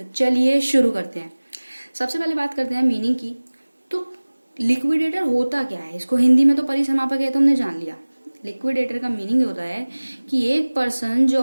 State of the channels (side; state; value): both; inverted; correlation -1.00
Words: चलिए शुरू करते हैं। सबसे पहले बात करते हैं मीनिंग की। तो लिक्विडेटर होता क्या है, इसको हिंदी में तो परिसमापक है तो हमने जान लिया। लिक्विडेटर का मीनिंग होता है कि एक पर्सन जो